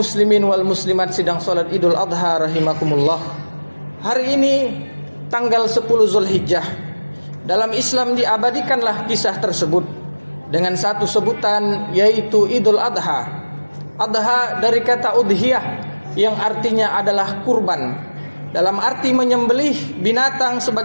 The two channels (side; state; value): both; inverted; correlation -1.00